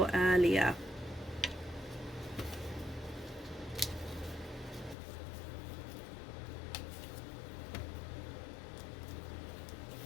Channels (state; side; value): drops out; right; at 5.0 s